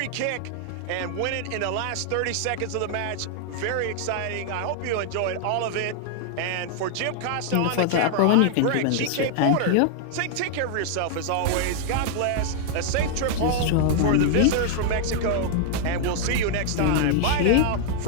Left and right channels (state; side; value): different; both; correlation 0.00